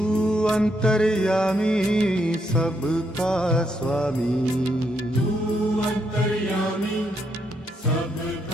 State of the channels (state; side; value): normal; both; correlation 0.77